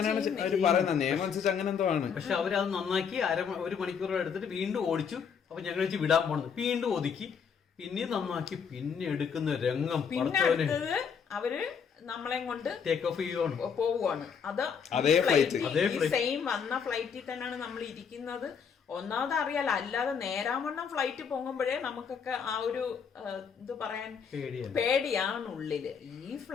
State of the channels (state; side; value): quieter; right; 6.8 dB